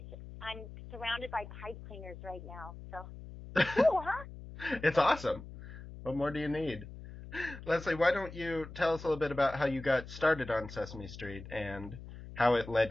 I'm surrounded by pipe cleaners right now. So cool, huh? It's awesome. What more do you need? Leslie, why don't you tell us a little bit about how you got started on Sesame Street and how it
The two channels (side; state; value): left; noise; hum, 13 dB below the sound